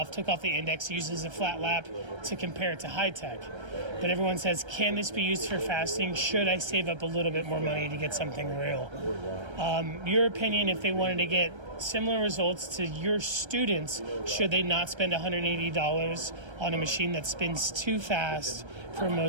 took off the index, used as a flat lap to compare it to high tech. But everyone says, can this be used for fasting? Should I save up a little bit more money to get something real? Your opinion, if they wanted to get similar results to your students, should they not spend $180 on a machine that spins too fast for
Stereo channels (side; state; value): left; late; 1.3 ms